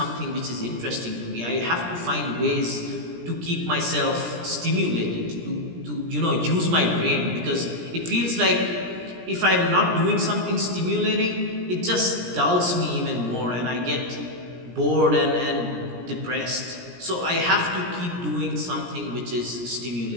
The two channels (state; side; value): late; left; 17 ms